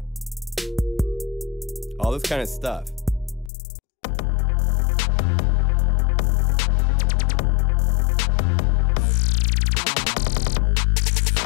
all this kind of stuff.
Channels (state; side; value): drops out; right; at 3.5 s